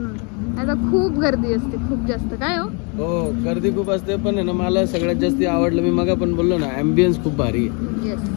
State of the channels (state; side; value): quieter; right; 34.2 dB